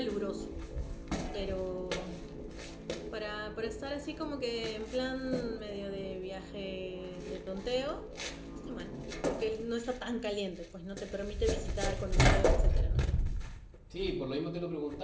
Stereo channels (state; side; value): identical; both; correlation 1.00